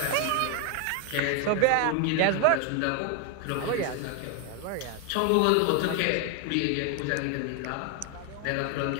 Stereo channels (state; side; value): different; both; correlation 0.01